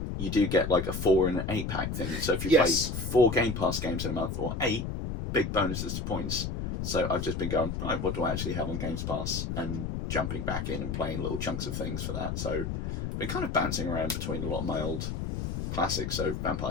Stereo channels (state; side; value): noise; left; rumble, 3 dB below the sound